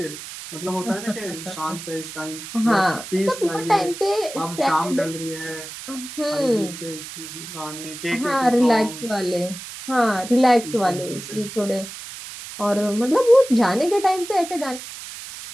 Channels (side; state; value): right; noise; hiss, 12 dB below the sound